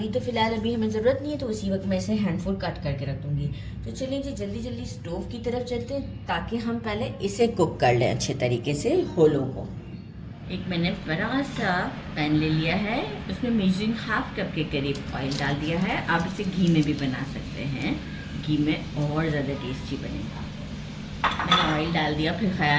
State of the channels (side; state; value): both; identical; correlation 1.00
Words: तो फ़िलहाल अभी हमें ज़रूरत नहीं है, तो उसी वक्त मैं इसे हैंडफुल कट करके रख दूँगी। तो चलिए जी, जल्दी जल्दी स्टोव की तरफ चलते हैं ताकि हम पहले इसे कुक कर लें अच्छे तरीके से होलों को। एक मैंने बड़ा सा पैन ले लिया है, उसमें मेजरिंग हाफ कप के करीब ऑयल डाल दिया है। आप इसे घी में भी बना सकते हैं, घी में और ज़्यादा टेस्टी बनेगा। मैंने ऑयल डाल दिया, फिर